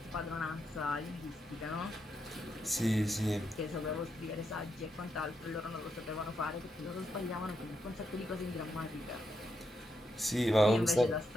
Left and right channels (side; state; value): both; normal; correlation 0.82